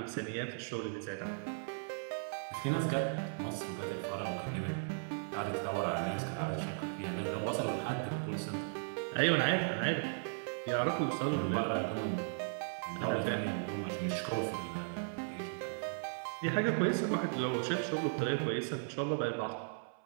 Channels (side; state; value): left; silent; 53 dB below the other